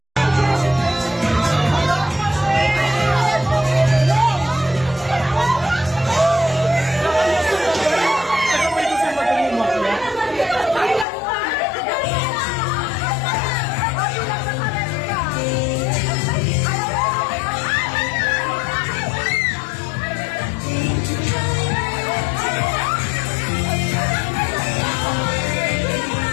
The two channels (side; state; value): right; drops out; at 11.1 s